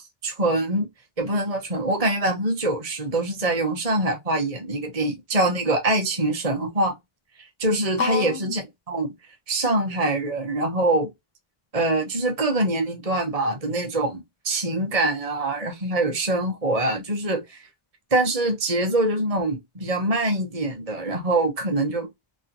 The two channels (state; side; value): late; left; 1.7 ms